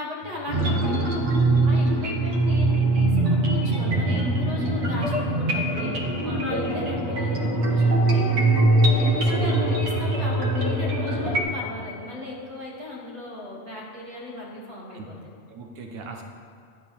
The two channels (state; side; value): late; left; 8.2 ms